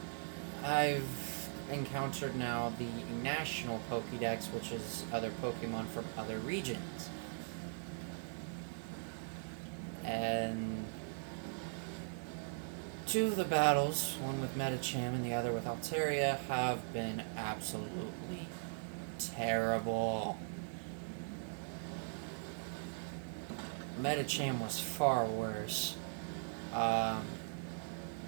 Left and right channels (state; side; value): silent; left; digital silence